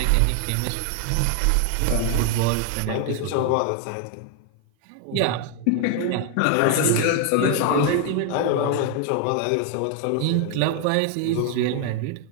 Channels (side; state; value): both; different; correlation 0.00